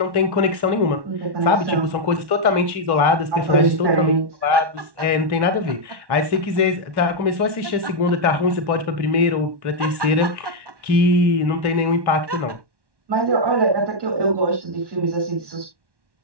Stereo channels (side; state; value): left; late; 1.1 ms